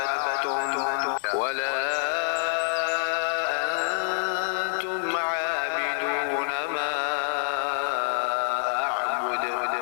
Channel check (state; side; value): silent; right; 60 dB below the other